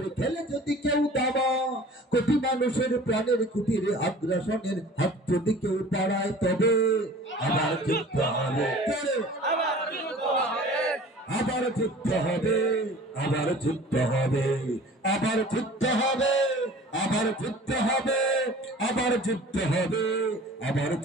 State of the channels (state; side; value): normal; both; correlation 0.45